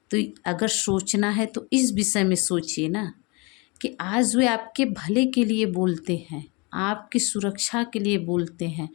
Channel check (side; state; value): right; quieter; 28.8 dB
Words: तो अगर सोचना है तो इस विषय में सोचिए ना, कि आज वे आपके भले के लिए बोलते हैं, आपकी सुरक्षा के लिए बोलते हैं,